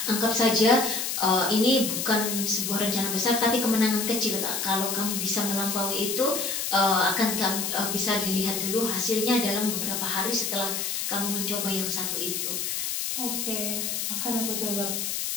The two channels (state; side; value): noise; left; hiss, 2 dB below the sound